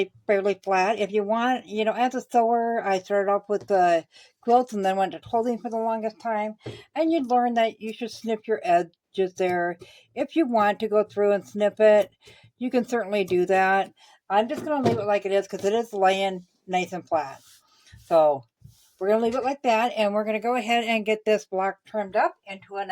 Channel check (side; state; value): both; identical; correlation 1.00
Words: fairly flat. If you want, as a sewer, I started off with the quilts and then went to quilting for the longest time. And you'd learn that you should snip your edges there. If you want to go through and snip it, you can certainly do that. I'm just going to leave it like it is because it is laying nice and flat. So we're going to leave it like that. And we're going to go ahead and get this block trimmed up into an